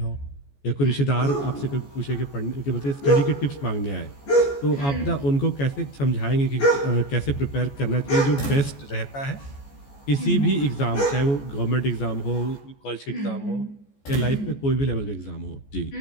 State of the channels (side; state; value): right; late; 14 ms